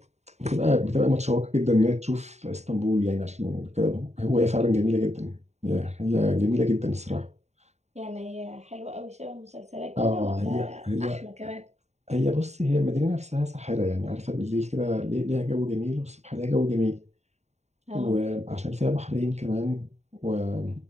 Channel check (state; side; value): late; left; 0.32 ms